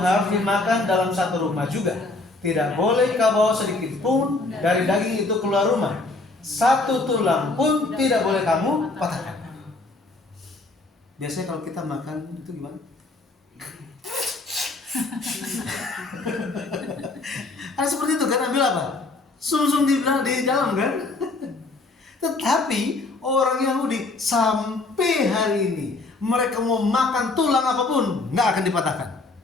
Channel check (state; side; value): quieter; right; 3.3 dB